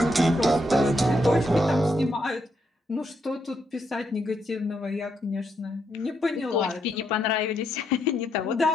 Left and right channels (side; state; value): both; normal; correlation 0.78